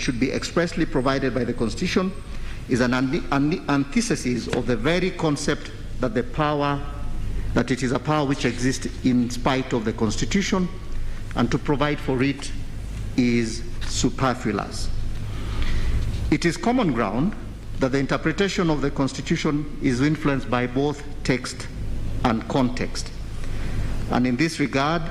be expressly provided by the Constitution is an antithesis of the very concept that it is a power which exists in spite of the Constitution, and to provide for it is superfluous. It is common ground that the interpretation of the Constitution is influenced by both text and context. And in this regard,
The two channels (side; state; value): both; identical; correlation 1.00